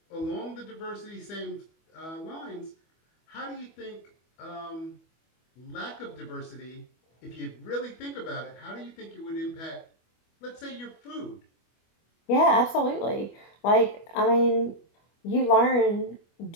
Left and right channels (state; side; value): late; right; 25 ms